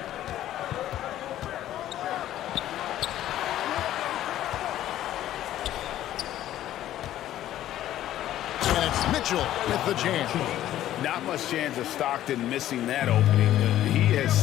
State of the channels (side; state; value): right; quieter; 12.9 dB